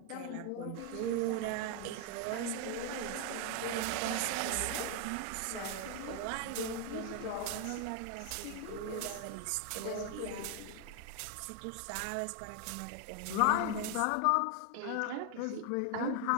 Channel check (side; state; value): both; different; correlation 0.00